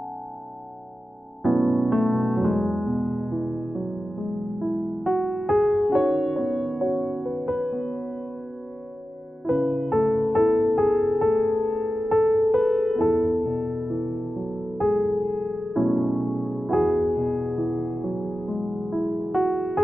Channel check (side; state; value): both; normal; correlation 0.94